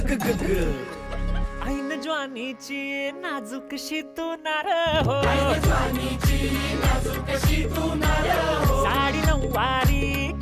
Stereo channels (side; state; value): both; identical; correlation 1.00